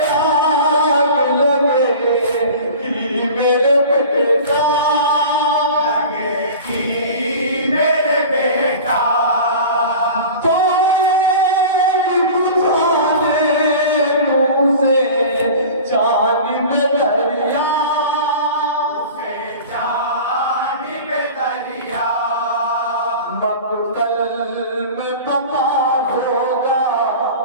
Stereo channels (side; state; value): both; inverted; correlation -0.37